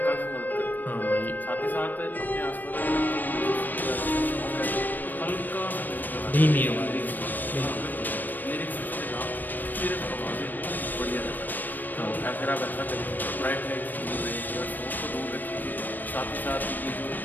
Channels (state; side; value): late; right; 0.089 ms